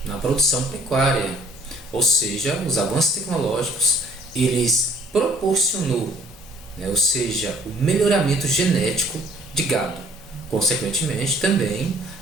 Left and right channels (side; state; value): both; normal; correlation 0.56